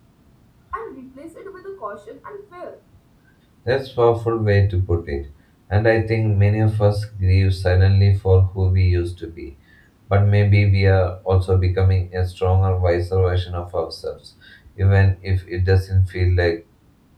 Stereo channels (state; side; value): identical; both; correlation 1.00